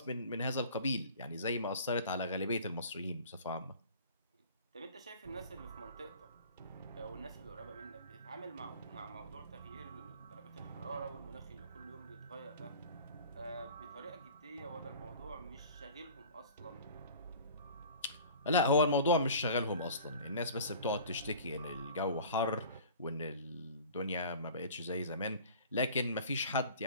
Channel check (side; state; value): both; inverted; correlation -0.44